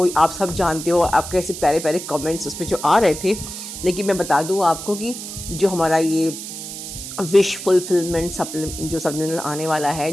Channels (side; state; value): right; noise; hiss, 9 dB below the sound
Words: आप सब जानते हो, आपके ऐसे प्यारे प्यारे कमेंट्स उसमें जो आ रहे थे। लेकिन मैं बता दूँ आपको कि जो हमारा ये विश फुलफिलमेंट जो सप्लीमेंटल आने वाला है,